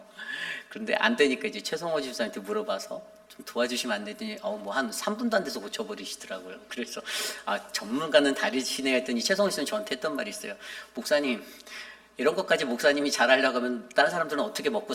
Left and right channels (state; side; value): identical; both; correlation 1.00